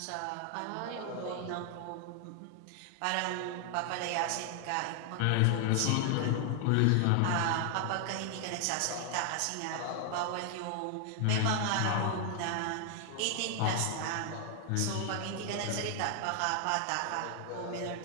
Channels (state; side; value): different; both; correlation 0.00